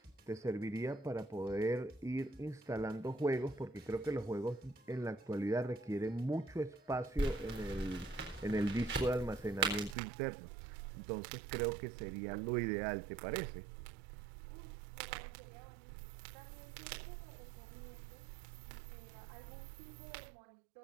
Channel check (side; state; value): left; drops out; at 10.0 s